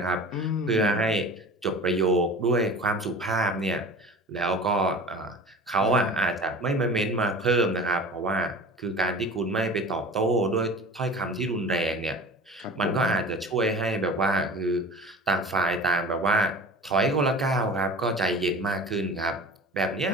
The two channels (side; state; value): both; normal; correlation 0.38